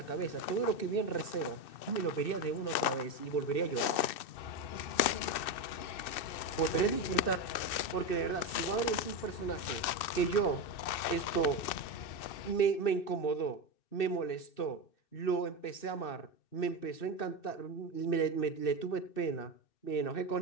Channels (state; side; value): late; right; 2.6 ms